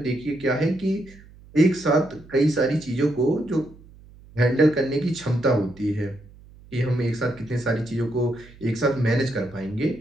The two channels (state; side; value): noise; right; hum, 23 dB below the sound